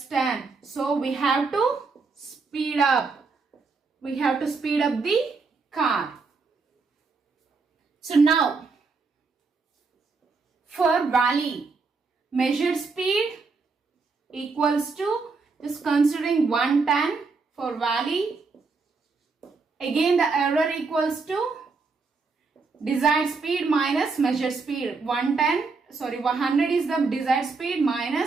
10. So we have to speed up. We have to speed up the car. So now for valley, measured speed equals to, just considering 110 for valley. Again the error equals to desired speed minus measured speed. 100 is the desired speed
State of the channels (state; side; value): quieter; left; 4.3 dB